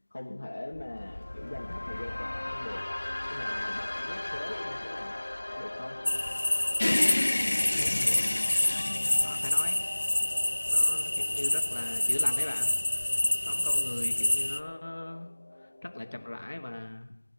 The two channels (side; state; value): both; inverted; correlation -1.00